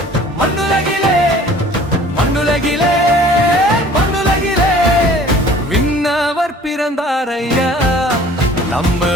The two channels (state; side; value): normal; both; correlation 0.50